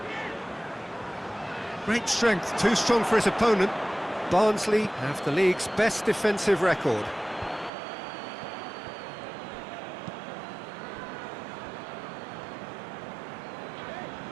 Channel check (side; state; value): left; drops out; at 7.7 s